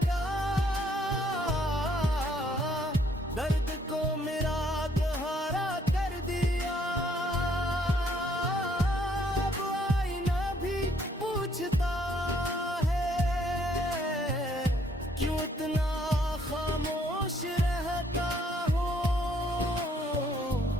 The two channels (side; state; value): both; normal; correlation 0.66